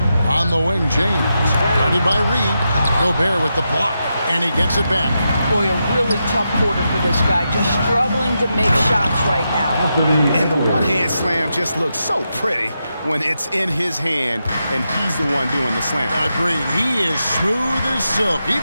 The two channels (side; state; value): both; inverted; correlation -0.86